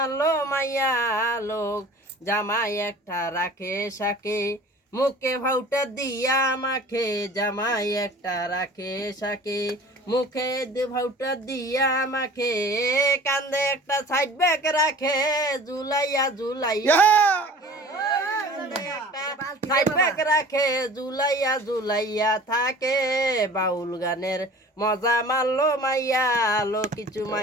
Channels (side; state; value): both; normal; correlation 0.44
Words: মাইয়া লোক। জামাই একটা রাখে সাকে, মুখে ভাউটা দিয়া মাখে, জামাই একটা রাখে সাকে, মুখে ভাউটা দিয়া মাখে, কান্দে একটা সাইড ব্যাগ রাখে, ঝুলাইয়া ঝুলাইয়া সাইড ব্যাগ রাখে, ঝুলাইয়া ঝুলাইয়া থাকে। বাউল গানের মজা মারলো মাইয়া লোক, কিছু